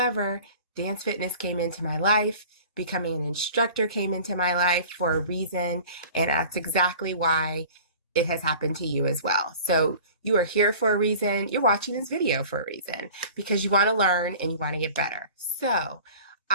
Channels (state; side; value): inverted; both; correlation -0.43